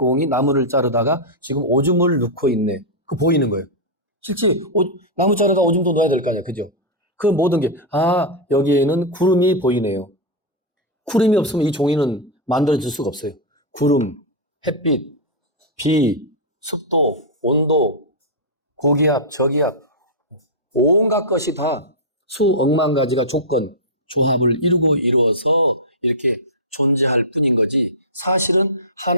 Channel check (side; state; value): both; normal; correlation -0.08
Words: 나무를 자르다가 지금 오줌을 넣고 있네. 그 보이는 거예요. 실제 나무 자르다 오줌도 넣어야 될 거 아니야, 그죠? 그 모든 게 여기에는 구름이 보이네요. 구름이 없으면 이 종이는 만들어질 수가 없어요. 구름, 햇빛, 비, 습도, 온도, 고기압, 저기압, 온갖 것이 다 수억만 가지가 조합을 이루어서 이렇게 존재할 뿐인 거지. 사실은